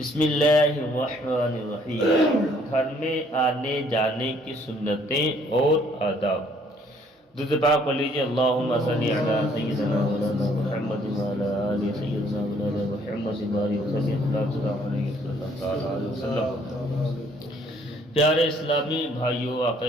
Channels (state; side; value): normal; both; correlation 0.63